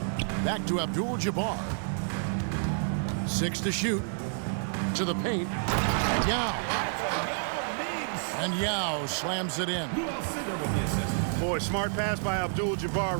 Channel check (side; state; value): left; silent; digital silence